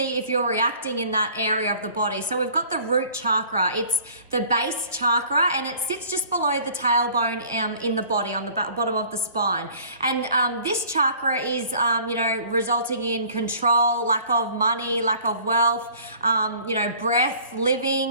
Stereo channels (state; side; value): inverted; both; correlation -0.52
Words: if you're reacting in that area of the body. So we've got the root chakra. It's the base chakra, and it sits just below the tailbone in the body, on the bottom of the spine. And this chakra is, resulting in control, lack of money, lack of wealth, breath, living.